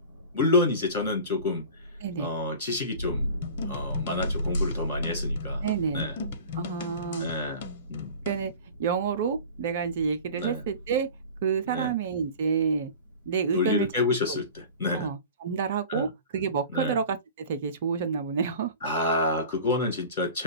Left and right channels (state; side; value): inverted; both; correlation -0.39